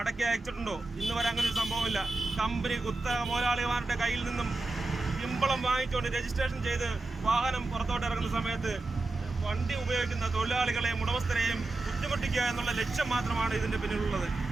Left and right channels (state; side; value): quieter; left; 3.1 dB